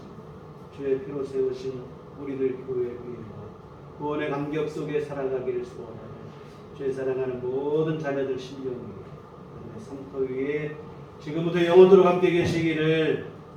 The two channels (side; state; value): both; identical; correlation 1.00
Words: 주의 피로 세우신 우리들 교회 위에와 구원의 감격 속에 살아가기를 소원하는 주의 사랑하는 모든 자녀들 심령 위에 성터 위에 지금부터 영원토록 함께 계시기를